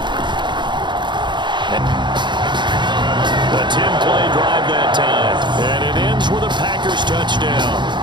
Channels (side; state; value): left; late; 0.22 ms